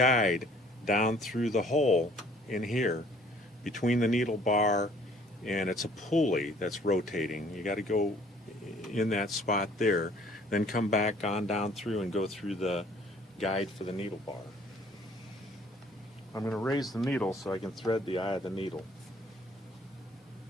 down through the hole in here between the needle bar, and it's a pulley that's rotating. You got to go in that spot there, then come back on down through and go through the guide for the needle bar. I'm going to raise the needle so I can thread the eye of the needle.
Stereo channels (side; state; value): both; normal; correlation 0.58